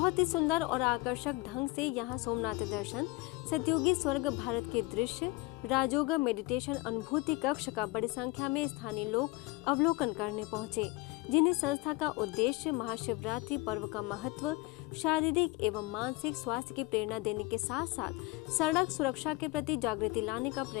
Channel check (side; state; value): right; quieter; 22.2 dB